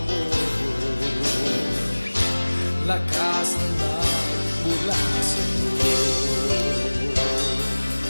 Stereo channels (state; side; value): inverted; both; correlation -1.00